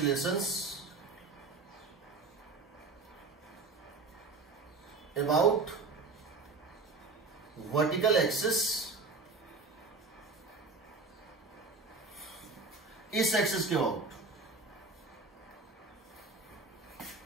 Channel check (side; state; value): left; quieter; 4.0 dB